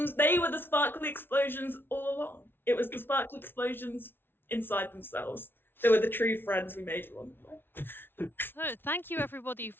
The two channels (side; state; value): right; late; 0.11 ms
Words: the sparkly explosions all along. It was the sparkly explosions inside themselves. They were the true friends we made along the way. So, thank you everybody